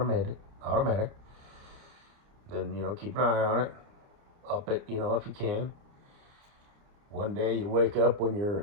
Then, keep an eye on it. Up it, if you can. One day you wake up when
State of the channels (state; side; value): late; left; 29 ms